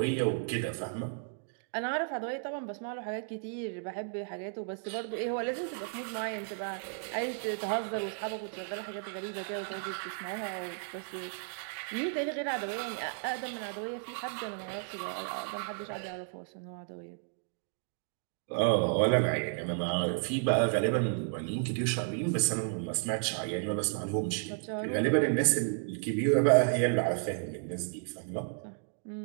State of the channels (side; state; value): left; silent; digital silence